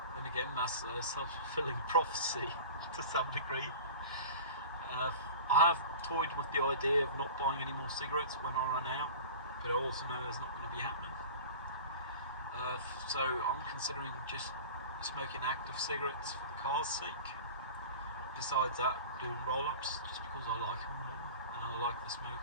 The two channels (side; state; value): both; inverted; correlation -0.37